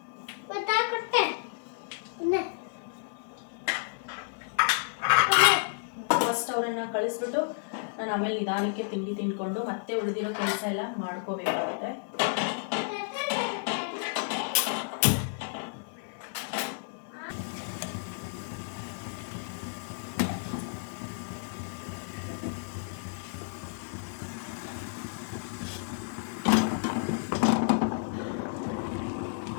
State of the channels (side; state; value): right; silent; digital silence